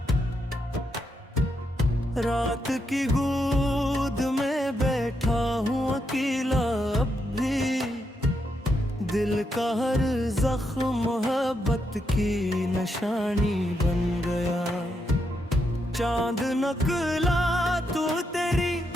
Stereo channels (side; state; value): both; normal; correlation 0.81